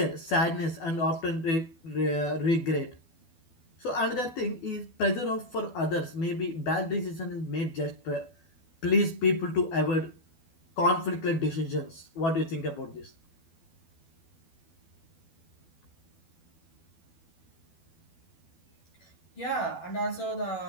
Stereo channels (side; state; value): right; late; 12 ms